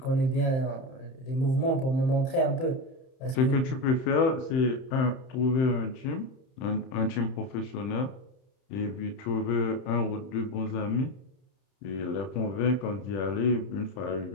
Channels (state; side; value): late; right; 31 ms